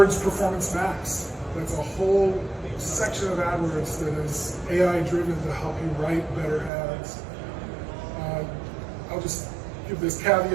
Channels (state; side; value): drops out; left; at 6.7 s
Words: Performance Max. That's a whole section of AdWords that is AI driven to help you write better ads. I'll just give this